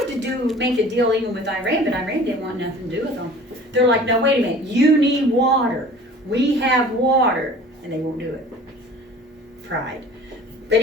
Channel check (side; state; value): both; normal; correlation 0.45